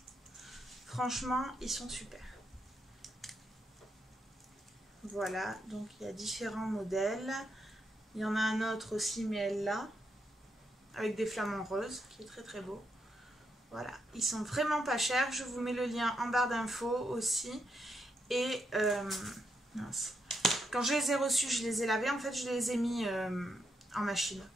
Franchement, ils sont super. Voilà, donc il y a différents modèles. Il y en a un autre aussi, mais elle là, avec des flamants roses, qui est très très beau. Voilà, ils sont vraiment pas chers. Je vous mets le lien en barre d'infos aussi. Et mince. Quand je les ai reçus, je les ai lavés. En fait, je les ai mis en machine,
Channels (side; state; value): both; normal; correlation 0.80